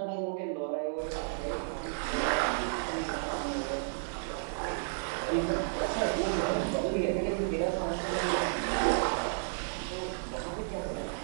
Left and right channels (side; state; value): left; silent; digital silence